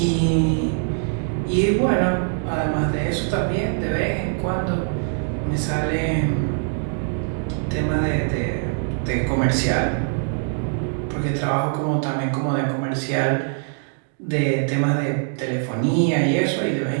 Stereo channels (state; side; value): silent; left; 62 dB below the other